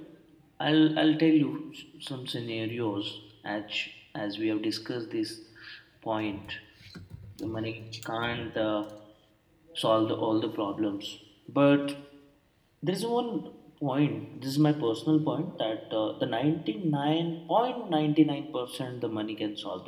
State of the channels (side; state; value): both; identical; correlation 1.00